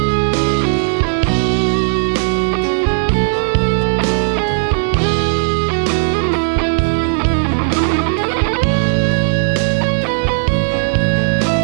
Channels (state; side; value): silent; left; digital silence